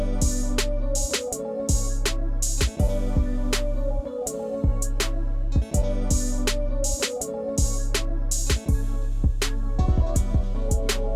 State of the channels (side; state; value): both; identical; correlation 1.00